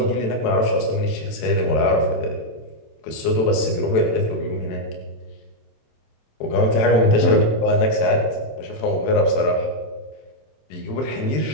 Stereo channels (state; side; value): late; right; 27 ms